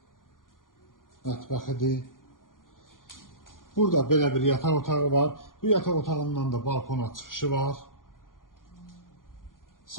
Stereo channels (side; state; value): right; late; 0.90 ms